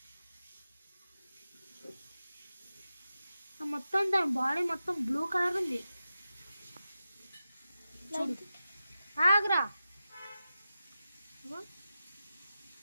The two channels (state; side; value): inverted; both; correlation -0.92